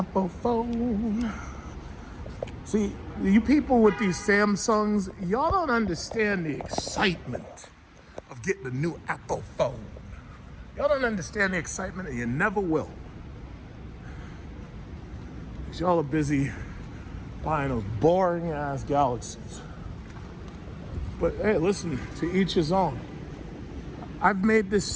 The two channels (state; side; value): identical; both; correlation 1.00